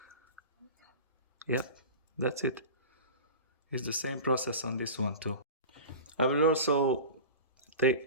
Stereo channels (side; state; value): both; inverted; correlation -0.32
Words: Yep, that's it. It's the same process on this one too. I will also